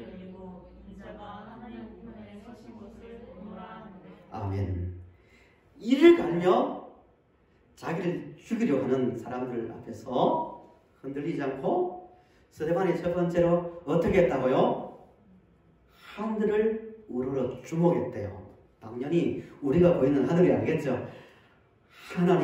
열리고 인자가 하나님 우편에 서신 것을 보노라 하는데. 아멘. 이를 갈며 자기를 죽이려 하는 사람들 앞에서 흔들리지 않고 스데반이 첫 번째로 어떻게 했다고요? 하늘을 우러러 주목했대요. 당연히 우리가 보이는 하늘이 아니겠죠.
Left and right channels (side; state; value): both; identical; correlation 1.00